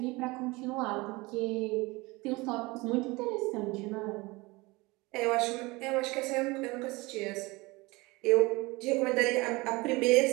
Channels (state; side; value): quieter; left; 23.3 dB